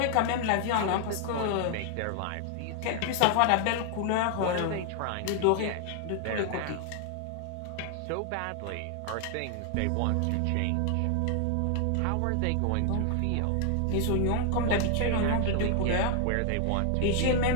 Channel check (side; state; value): both; different; correlation 0.00